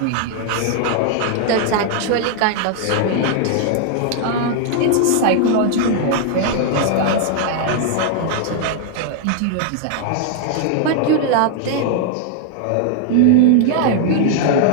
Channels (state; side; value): different; both; correlation 0.00